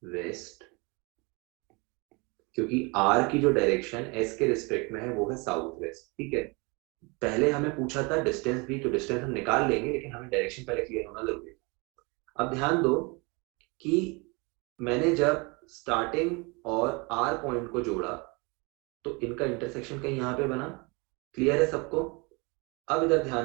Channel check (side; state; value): left; quieter; 28.6 dB